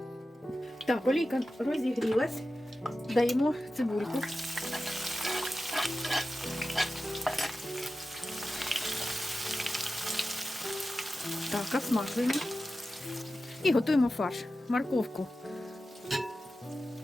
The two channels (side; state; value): both; normal; correlation 0.93